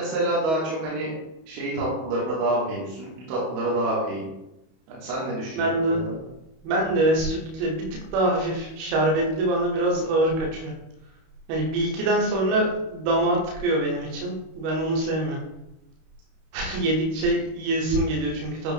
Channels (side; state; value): left; late; 31 ms